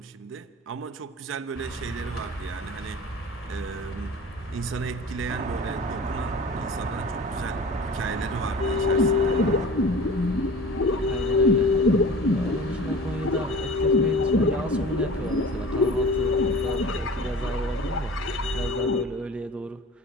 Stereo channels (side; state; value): both; normal; correlation 0.40